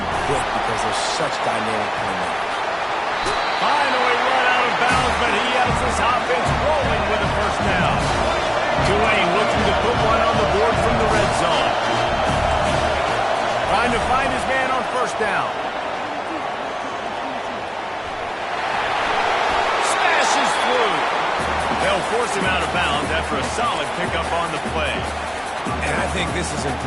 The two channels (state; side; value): identical; both; correlation 1.00